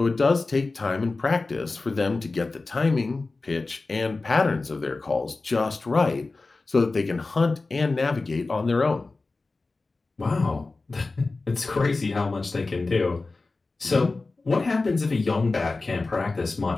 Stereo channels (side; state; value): right; quieter; 3.6 dB